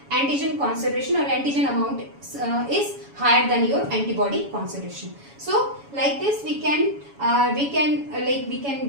antigen concentration or antigen amount is higher than your antibody concentration. So like this we can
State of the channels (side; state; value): left; late; 7.1 ms